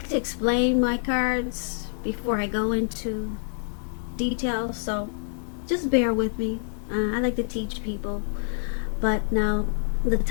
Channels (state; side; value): silent; right; digital silence